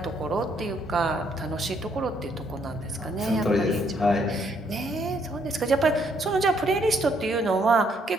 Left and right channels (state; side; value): normal; both; correlation 0.70